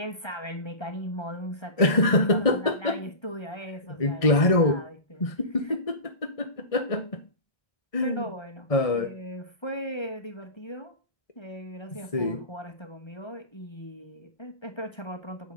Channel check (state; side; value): late; right; 1.6 ms